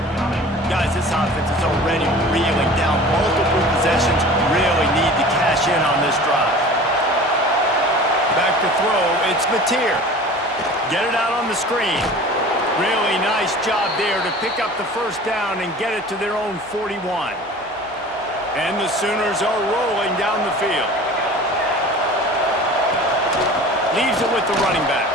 Guys, this offense is already reeling down multiple possessions. Really need to cash in on this drive. Back to throw. It's Mateer. Get it out on the screen. Really nice job there to pick up the first down and get it to their own 41. And the Sooners are rolling down the field. Leaves it with the running back.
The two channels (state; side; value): normal; both; correlation 0.41